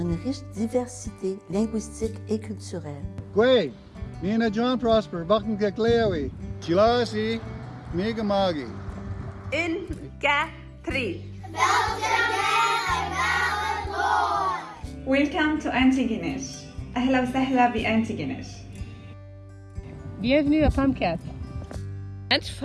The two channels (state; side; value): identical; both; correlation 1.00